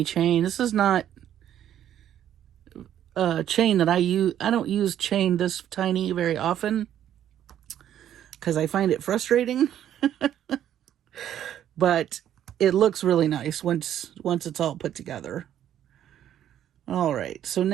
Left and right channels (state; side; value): quieter; left; 10.8 dB